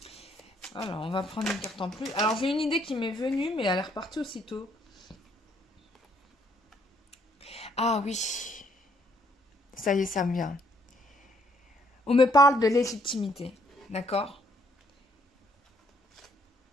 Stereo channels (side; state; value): both; normal; correlation 0.68